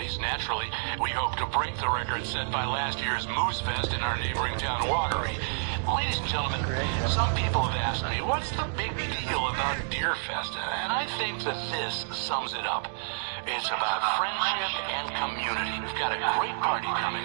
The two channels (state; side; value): silent; left; digital silence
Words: Naturally, we hope to break the record set by last year's Moose Fest in our neighboring town, Watery. Ladies and gentlemen, some people have asked me, what's the big deal about Deerfest? And I think that this sums it up. It's about friendship and community. We've got a great party coming